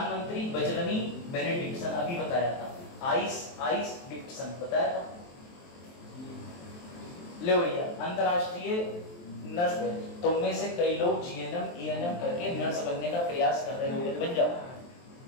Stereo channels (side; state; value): right; late; 23 ms